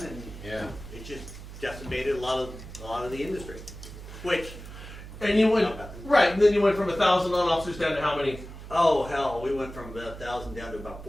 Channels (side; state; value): right; noise; hum, 13 dB below the sound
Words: and Yeah. it just decimated a lot of the industry. Which, And you went right, and then you went from 1,000 loan officers down to how many? oh hell, we went from about 1,000 down to about